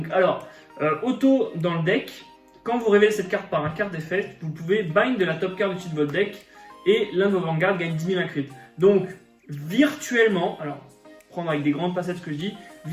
alors, auto dans le deck, quand vous révélez cette carte par un carte d'effet, vous pouvez bind de la top card du-dessus de votre deck, et l'un de vos vanguards gagne 10 000 crit. Donc, virtuellement, alors, prendre avec des grandes pincettes ce que je dis,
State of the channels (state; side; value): identical; both; correlation 1.00